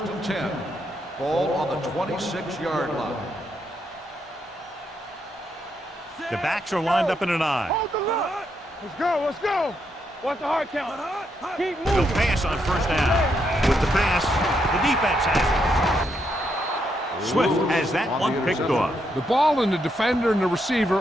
and 10. Ball on the 26-yard line. The backs are lined up in an I. Hold the line. Let's go. Watch the hard count. Keep He'll moving. pass on first down. With the pass, the defense has it. Swift has that one picked off. The ball and the defender and the receiver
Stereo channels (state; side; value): normal; both; correlation 0.79